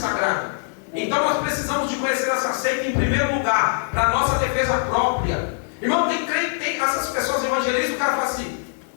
Então nós precisamos de conhecer essa seita em primeiro lugar, para a nossa defesa própria. Irmão, tem crente, tem essas pessoas evangelistas, o cara fala assim:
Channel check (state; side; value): silent; right; digital silence